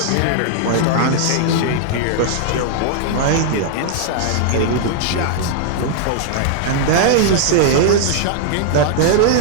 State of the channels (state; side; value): different; both; correlation -0.01